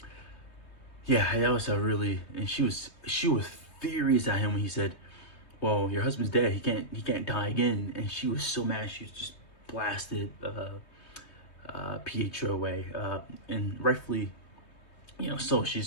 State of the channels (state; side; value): late; right; 3.2 ms